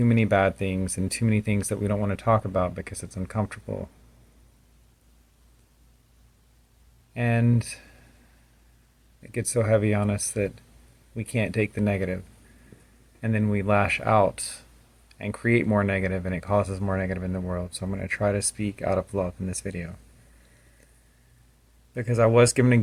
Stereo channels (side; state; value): both; identical; correlation 1.00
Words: many bad things, and too many things that we don't want to talk about because it's uncomfortable. And it gets so heavy on us that we can't take the negative, and then we lash out and create more negative, and it causes more negative in the world. So I'm going to try to speak out of love in this video because I was given a